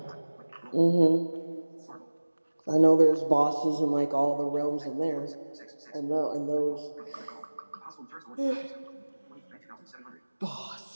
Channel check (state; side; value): inverted; both; correlation -1.00